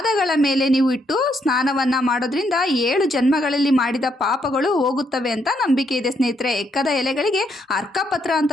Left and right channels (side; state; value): both; normal; correlation 0.75